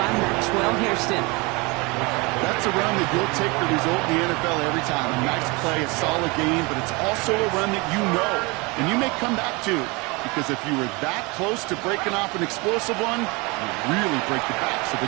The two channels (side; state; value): left; quieter; 26.7 dB